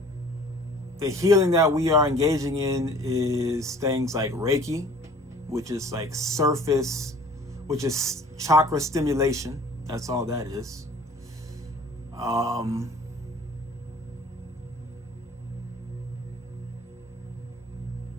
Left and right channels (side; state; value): both; normal; correlation 0.50